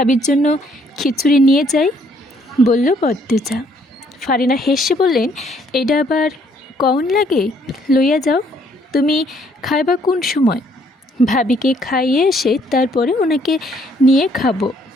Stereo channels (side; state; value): both; normal; correlation 0.66